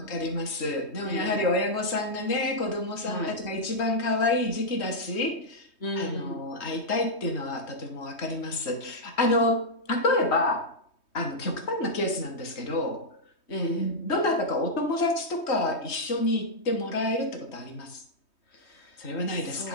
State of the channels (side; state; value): right; late; 3.2 ms